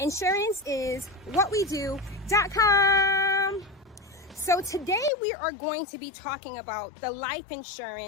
So today we are going to be talking about the life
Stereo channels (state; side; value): drops out; right; at 5.1 s